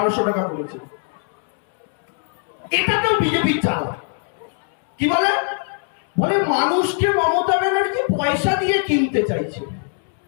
টাকা করেছে। এটাতেও বিজেপির চাল কি বলে বলে মানুষকে মমতা ব্যানার্জি পয়সা দিয়ে কিনতে চাইছে।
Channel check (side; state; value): right; silent; 56 dB below the other